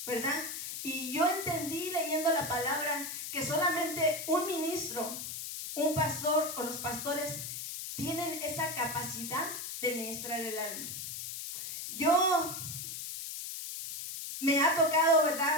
¿verdad? Y yo entendí leyendo la palabra que solamente un ministro, un pastor o los pastores tienen esa capacidad de ministrar el alma. Yo me ha tocado,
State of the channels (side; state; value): left; noise; hiss, 6 dB below the sound